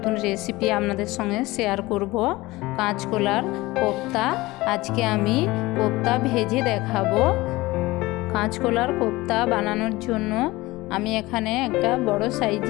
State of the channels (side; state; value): right; quieter; 20.1 dB